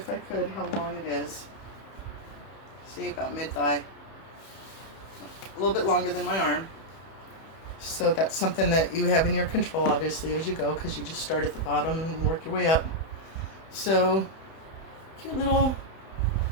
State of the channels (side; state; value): right; late; 31 ms